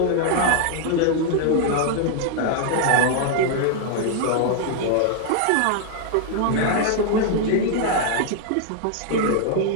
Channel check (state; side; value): different; both; correlation 0.00